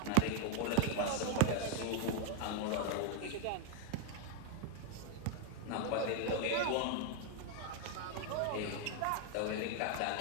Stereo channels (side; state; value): both; different; correlation 0.01